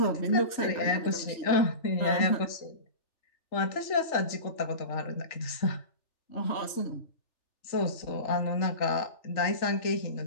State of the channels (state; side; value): late; right; 3.4 ms